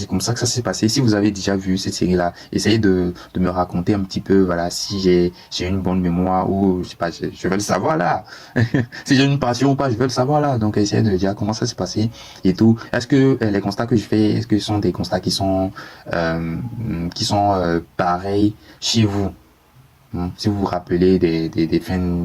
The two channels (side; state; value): both; identical; correlation 1.00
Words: comme ça que ça s'est passé. Si vous avez déjà vu cette série-là, essayez de me raconter un petit peu, voilà, si j'ai une bonne mémoire ou, je sais pas, je veux le savoir là. Si j'ai une passion ou pas, je veux le savoir là. Donc, essayez de dire comment ça s'est passé et tout. Est-ce que les constats que je fais, est-ce que ce sont des constats qui sont pareils chez vous? Si vous vous rappelez des